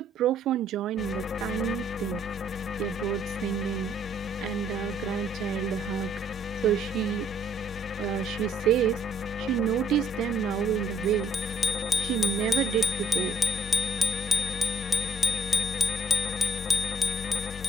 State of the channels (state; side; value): normal; both; correlation 0.67